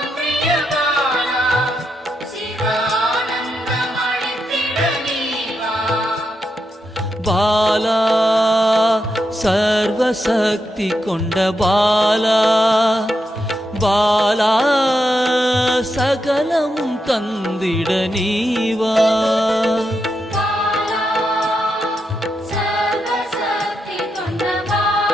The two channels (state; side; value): normal; both; correlation 0.84